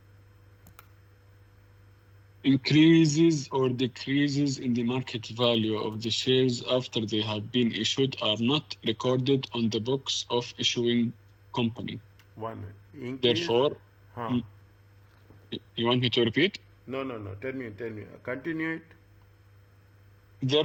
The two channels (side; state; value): both; identical; correlation 1.00